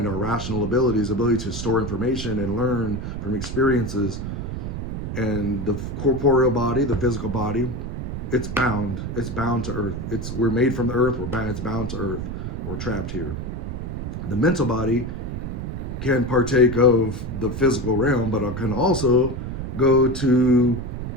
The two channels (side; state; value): right; noise; rumble, 5 dB below the sound